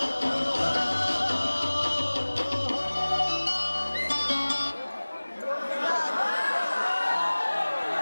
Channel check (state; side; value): inverted; both; correlation -1.00